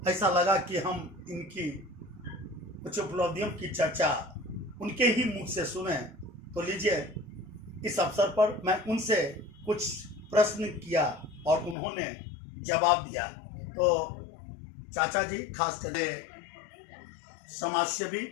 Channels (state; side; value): drops out; right; at 11.8 s